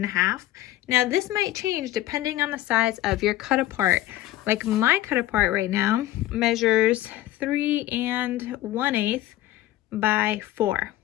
Now this might change depending on the size of your cut apart. Like my cut apart right now measures 3 1/8 by 4.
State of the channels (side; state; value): right; quieter; 15.1 dB